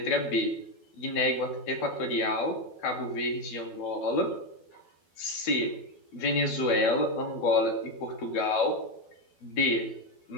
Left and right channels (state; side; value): late; right; 12 ms